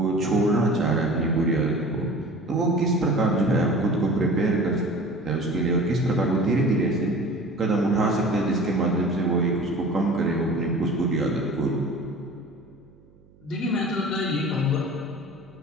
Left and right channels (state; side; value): noise; right; hum, 28 dB below the sound